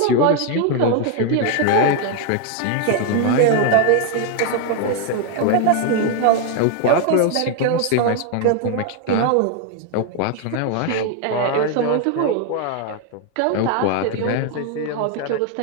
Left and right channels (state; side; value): different; both; correlation 0.00